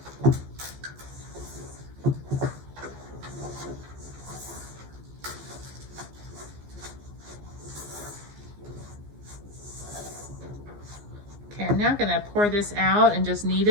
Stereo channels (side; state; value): left; late; 14 ms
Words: Okay, I'm now going to pour this out and just knead